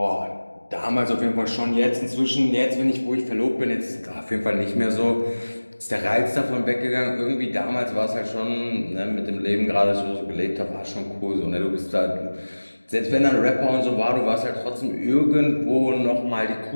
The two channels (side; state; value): both; inverted; correlation -1.00